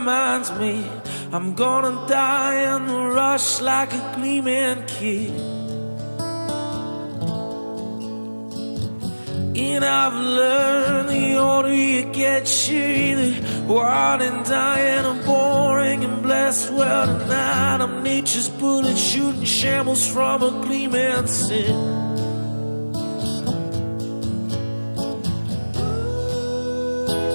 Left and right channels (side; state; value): both; inverted; correlation -1.00